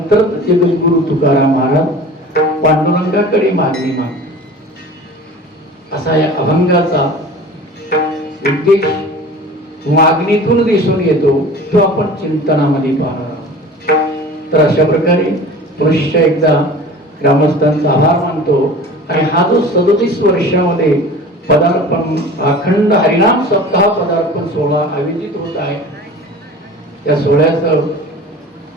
जगद्गुरु तुकाराम महाराज पांडुरंगाकडे मागणी माग, असा या अभंगाचा उद्देश मागणीतून दिसून येतो, तो आपण चिंतनामध्ये पाहणार आहोत. तर अशा प्रकारे पुरुष एकदा ग्रामस्थांचा आभार मानतो आणि हा जो 37 वर्षामध्ये पदार्पण अखंड हरिनाम सप्ताह पदार्पण सोहळा आयोजित होत आहे, या सोहळ्याचं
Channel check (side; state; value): both; normal; correlation 0.40